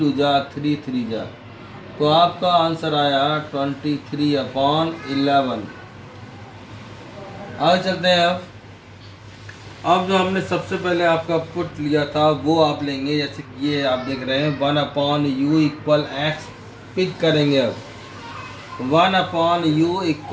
जा 3 3 जा, तो आपका आंसर आया 23/11। आगे चलते हैं। अब जो हमने सबसे पहले आपका पुट लिया था वो आप लेंगे, जैसे कि ये आप देख रहे हैं 1/u इक्वल x पिक करेंगे। अब 1/u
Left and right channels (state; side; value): identical; both; correlation 1.00